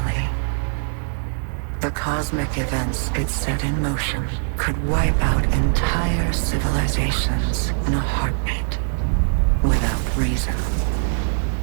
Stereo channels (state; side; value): silent; left; digital silence